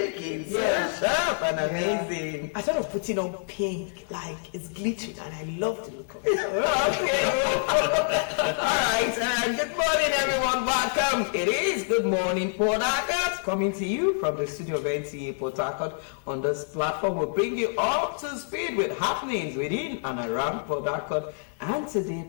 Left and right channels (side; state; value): right; silent; digital silence